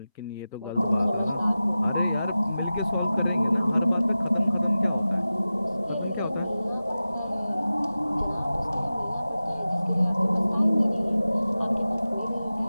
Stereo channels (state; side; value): inverted; both; correlation -0.95